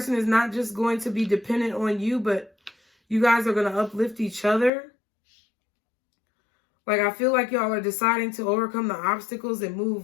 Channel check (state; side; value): drops out; right; at 4.7 s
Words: is not just going to be dependent on you, but you guys are going to uplift each other. Like, I feel like y'all are deciding to overcome the obstacles and move